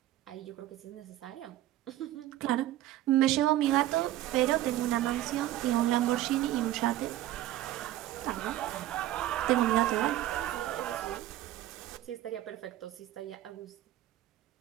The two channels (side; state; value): left; quieter; 14.1 dB